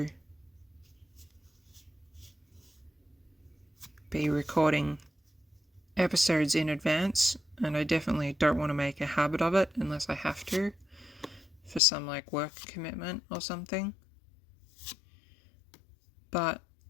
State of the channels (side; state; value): right; drops out; at 11.8 s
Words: be recording episodes in advance, and I definitely don't want to make a habit of it unless I have to for some like work commitment or something. But